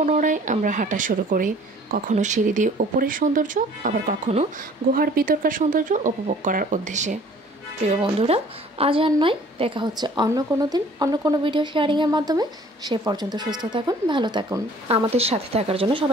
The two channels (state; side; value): normal; both; correlation 0.53